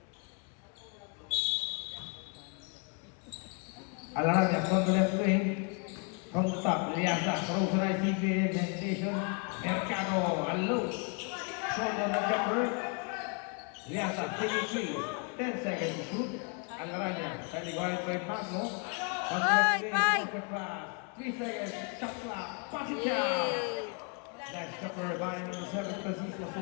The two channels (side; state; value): right; quieter; 33.8 dB